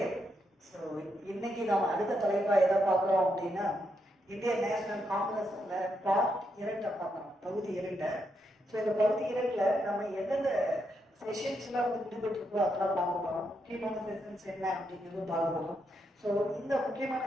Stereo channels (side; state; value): both; normal; correlation 0.80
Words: ஸோ இன்னைக்கு நாம் அடுத்த தலைப்பாக எதை பார்க்குறோம் அப்படின்னா, இந்திய நேஷனல் காங்கிரஸ்ல பார்ட் 2 பார்க்குறோம், பகுதி 2. ஸோ இந்த பகுதி 2ல் நம்ம எந்தெந்த செஷன்ஸ்லாம் வந்து விடுபட்டுருக்கோ அதெல்லாம் பார்க்க போகிறோம். முக்கியமான செஷன்ஸ் என்ன அப்படிங்கிறது பார்க்க போகிறோம். ஸோ இந்த முக்கியமான